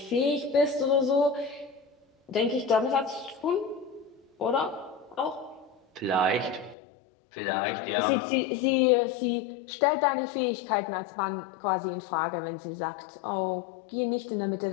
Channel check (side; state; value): right; drops out; at 6.8 s